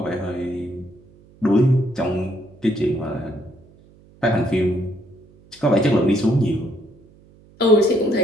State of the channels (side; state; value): right; noise; hum, 27 dB below the sound